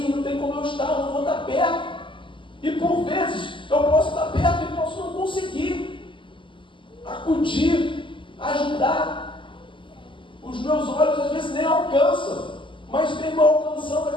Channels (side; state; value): right; late; 0.25 ms